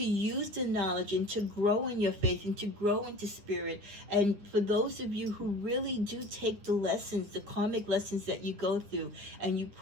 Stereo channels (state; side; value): late; left; 9.8 ms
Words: use the knowledge and to grow in your faith and to grow into spirit, and for those of you who really do take the lessons, the karmic lessons that you go through, and you